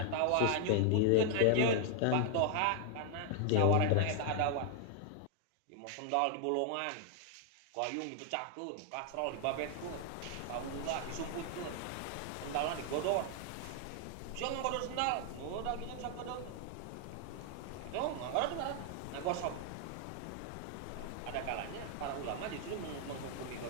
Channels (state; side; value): different; both; correlation 0.00